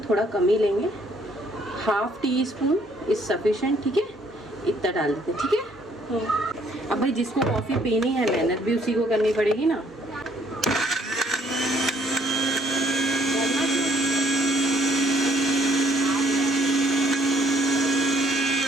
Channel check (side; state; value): both; normal; correlation 0.65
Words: थोड़ा कम ही लेंगे। 1/2 टीस्पून इज सफिशेंट, ठीक है, इतना डाल देते, ठीक है। अब भाई जिसको कॉफ़ी पीनी है, मेहनत भी उसी को करनी पड़ेगी ना।